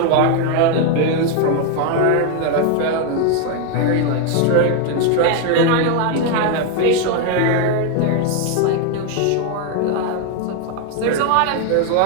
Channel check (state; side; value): different; both; correlation 0.01